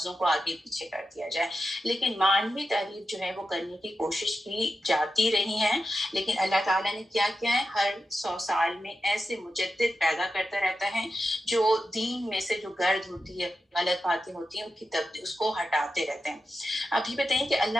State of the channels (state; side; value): normal; both; correlation 0.91